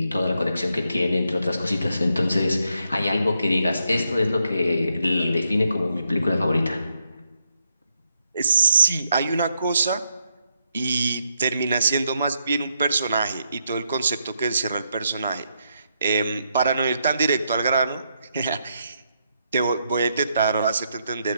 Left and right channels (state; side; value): inverted; both; correlation -0.79